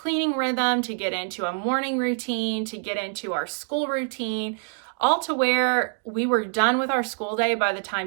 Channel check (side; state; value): left; silent; 62 dB below the other